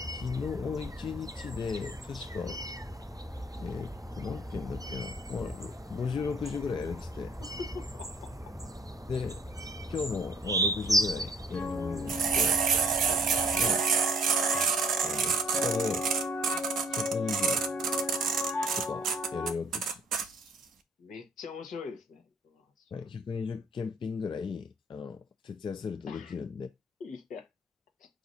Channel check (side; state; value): both; normal; correlation 0.59